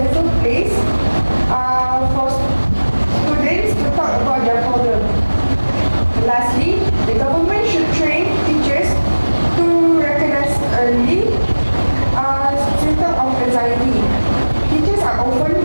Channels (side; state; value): both; inverted; correlation -1.00